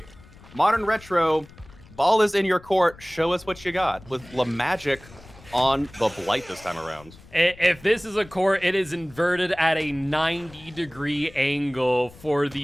Modern Retro, ball is in your court. Show us what you got with La Magic on the Blight this time around. If this is a court, it is inverted at a 90-degree angle for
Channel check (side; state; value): left; noise; rumble, 22 dB below the sound